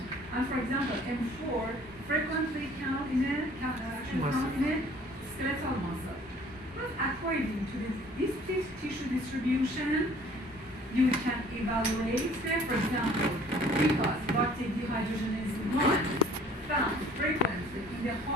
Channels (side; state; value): both; normal; correlation 0.53